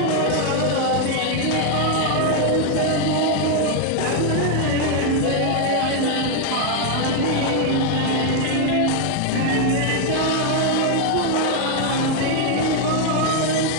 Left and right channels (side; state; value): both; different; correlation 0.01